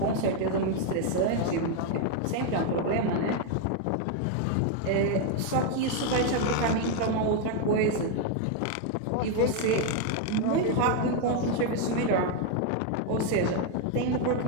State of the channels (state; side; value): different; both; correlation 0.01